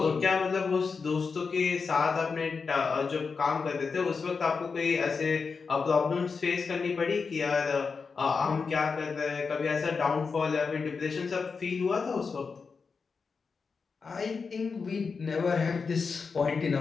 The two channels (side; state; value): right; quieter; 5.1 dB